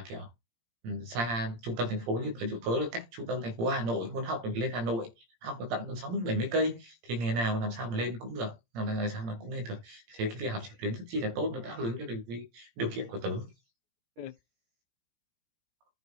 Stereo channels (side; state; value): left; late; 17 ms